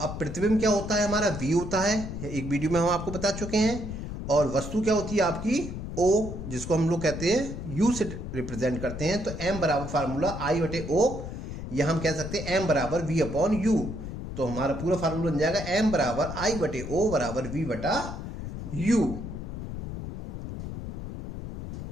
अब प्रतिबिंब क्या होता है? हमारा V होता है, एक वीडियो में हम आपको बता चुके हैं। और वस्तु क्या होती है आपकी? O, जिसको हम लोग कहते हैं U से रिप्रेजेंट करते हैं। तो m बराबर फार्मूला I बटे O, या हम कह सकते हैं m बराबर V अपॉन U। तो हमारा पूरा फार्मूला बन जाएगा m बराबर I बटे O बराबर V बटा U।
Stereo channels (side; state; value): left; noise; rumble, 7 dB below the sound